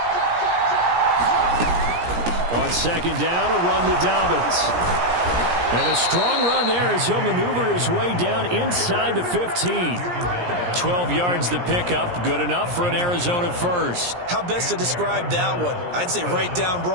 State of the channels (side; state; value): left; late; 17 ms